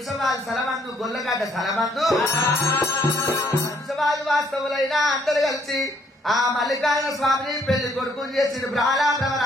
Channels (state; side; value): normal; both; correlation 0.67